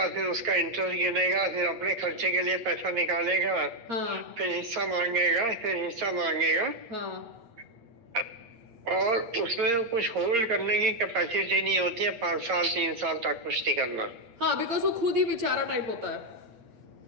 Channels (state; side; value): late; left; 9.0 ms